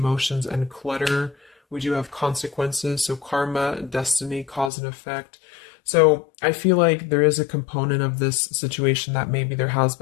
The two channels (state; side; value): drops out; right; at 4.7 s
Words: and clutter. We do have consequences. So karma, destiny, cause and effect. So I feel like there is a component of this situation that maybe there has